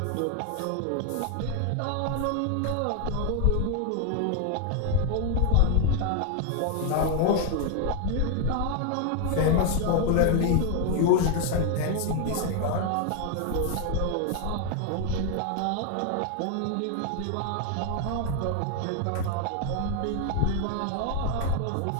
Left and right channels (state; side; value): different; both; correlation 0.00